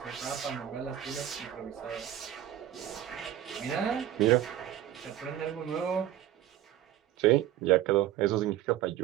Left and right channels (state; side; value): quieter; left; 12.0 dB